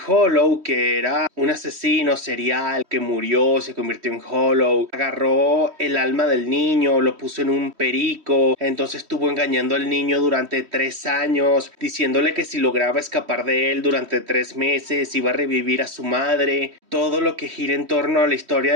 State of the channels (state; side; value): late; left; 3.1 ms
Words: Hollow, que era un asesino serial que murió, se convirtió en Hollow, agarró el alma del niño, lo puso en un perico, entonces estuvo engañando al niño durante 3 años, diciéndole que si lograba escapar de él durante 3 meses iba a revivir a su madre. Todo lo que gira en torno a la historia